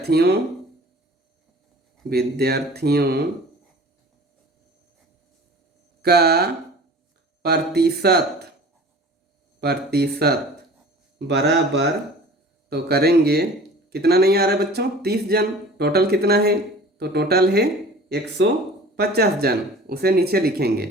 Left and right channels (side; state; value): both; normal; correlation 0.43